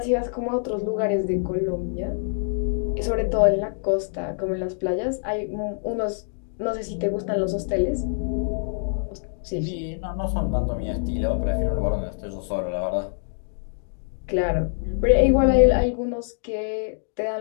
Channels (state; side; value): silent; right; digital silence